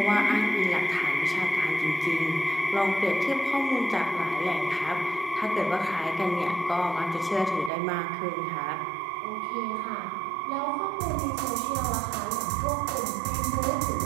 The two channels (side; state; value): left; drops out; at 7.7 s